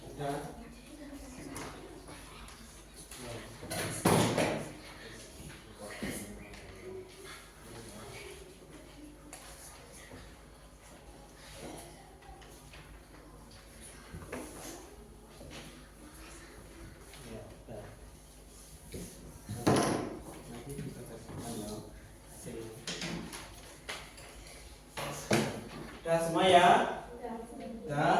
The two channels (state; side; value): identical; both; correlation 1.00